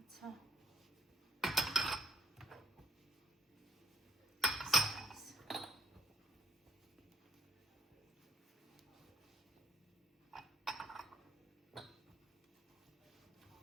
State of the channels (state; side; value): normal; both; correlation 0.62